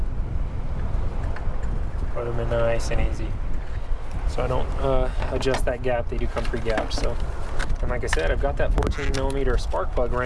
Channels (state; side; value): identical; both; correlation 1.00